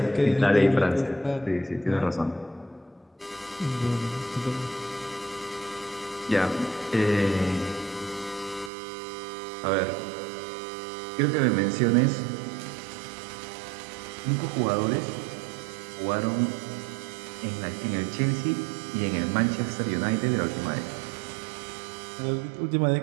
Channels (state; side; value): drops out; left; at 8.7 s